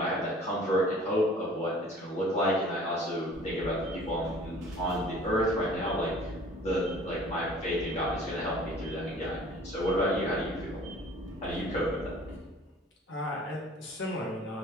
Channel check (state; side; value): normal; both; correlation 0.49